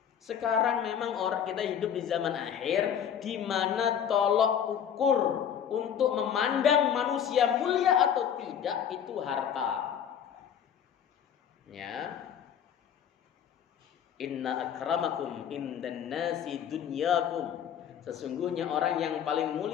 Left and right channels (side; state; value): right; quieter; 8.7 dB